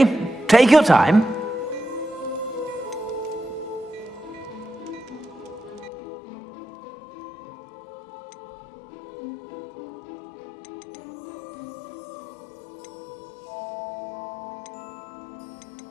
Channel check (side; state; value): right; drops out; at 5.9 s